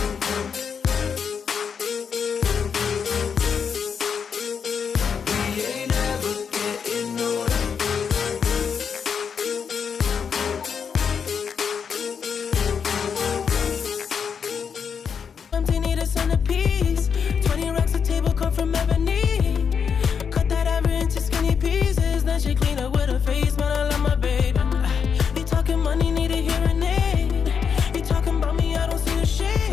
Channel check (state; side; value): quieter; right; 6.7 dB